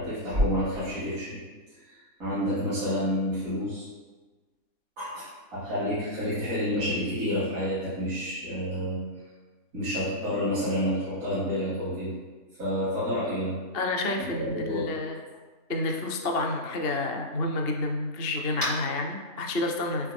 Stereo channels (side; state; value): left; late; 3.4 ms